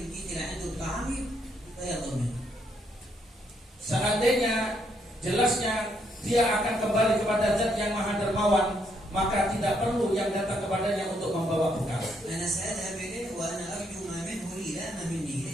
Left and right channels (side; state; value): both; normal; correlation 0.74